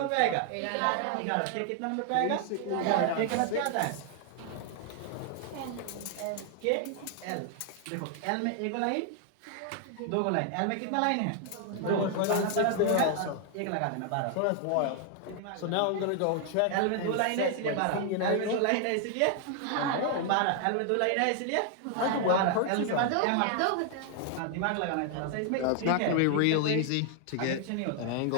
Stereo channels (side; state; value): both; different; correlation 0.00